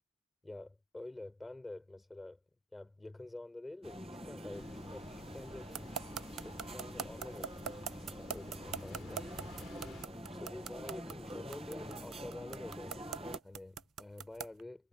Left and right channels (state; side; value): normal; both; correlation 0.62